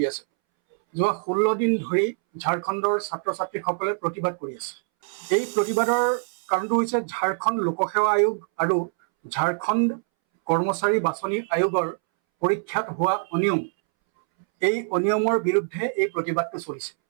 আছে। যোৱা 16 দিন ধৰি ঝাৰখণ্ডৰ ছাত্ৰ ছাত্ৰীসকলে প্ৰতিবাদ কৰি আছে। এই প্ৰতিবাদৰ কাৰণটো হৈছে ঝাৰখণ্ড লোকসেৱা আয়োগ আৰু ঝাৰখণ্ড কৰ্মচাৰী বাছনি আয়োগৰ পৰীক্ষাত হোৱা অনিয়ম, এই অনিয়মৰ বিৰুদ্ধে এই প্ৰতিবাদটো চলিছে।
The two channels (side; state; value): left; silent; 62 dB below the other